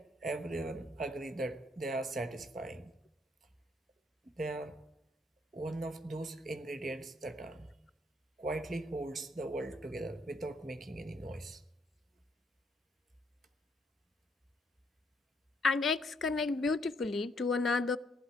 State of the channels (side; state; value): both; normal; correlation 0.71